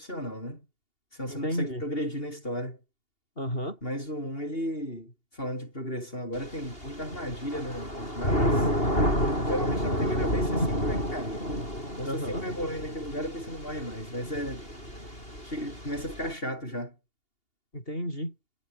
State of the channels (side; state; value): right; late; 2.8 ms